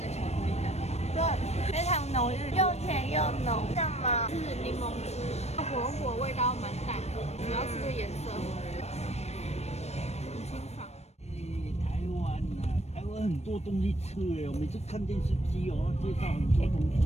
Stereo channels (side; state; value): right; late; 0.31 ms